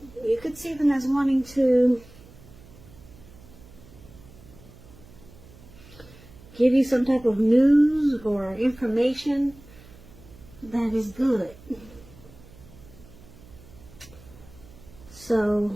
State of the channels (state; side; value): noise; right; hum, 21 dB below the sound